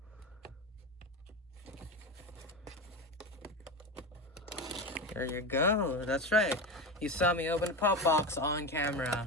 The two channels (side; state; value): both; normal; correlation 0.21